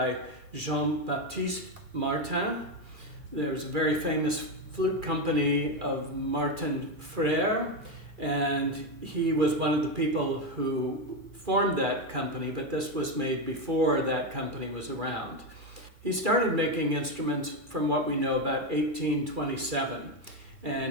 Baptiste Martin. There's a very famous flute company of Martin Frère, and he was one of the people who formed that company, but this was made before that company was around. He started making instruments from what we know about 1827,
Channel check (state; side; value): late; left; 2.4 ms